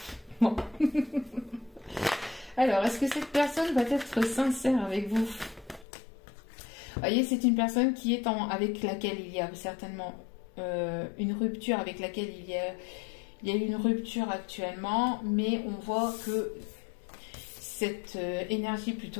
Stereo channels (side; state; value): right; drops out; at 5.9 s